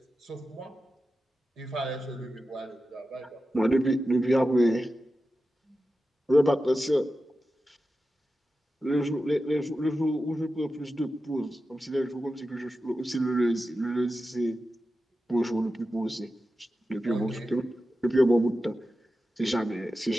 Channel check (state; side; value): normal; both; correlation 0.92